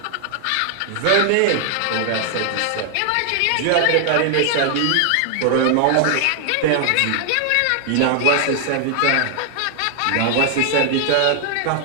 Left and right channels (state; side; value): different; both; correlation 0.00